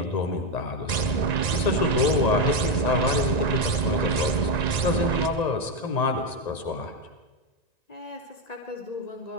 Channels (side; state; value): right; late; 1.9 ms